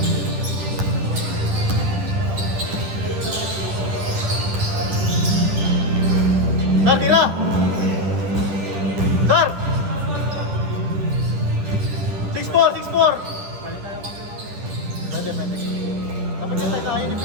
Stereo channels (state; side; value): late; left; 10 ms